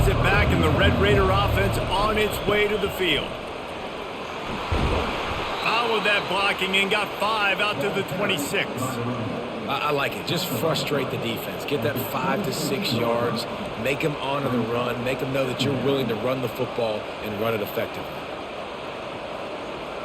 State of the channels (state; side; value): identical; both; correlation 1.00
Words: it back, and the Red Raider offense on its way to the field. Followed that blocking and got 5 out to the 26. I like it. Just frustrate the defense. Get that 5 to 6 yards. Make them honor the run. Make them know that you're willing to run the football and run it effectively.